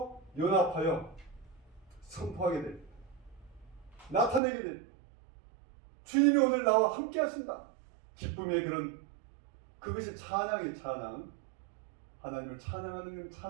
연합하여 선포하게 됩니다. 나타내게 됩니다. 주님이 오늘 나와 함께 하신다. 기쁨의 그것이 찬양의 찬양. 하나님을 찬양하는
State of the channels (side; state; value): left; drops out; at 4.4 s